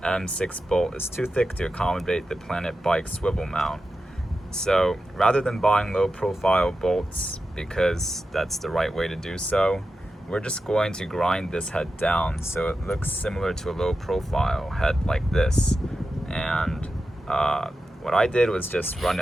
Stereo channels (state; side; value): normal; both; correlation 0.91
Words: M6 bolt is too thick to accommodate the Planet Bike swivel mount. So rather than buying low profile bolts, because that's the right way to do so, we're just going to grind this head down so it looks similar to a low profile head like this. And what I did was just run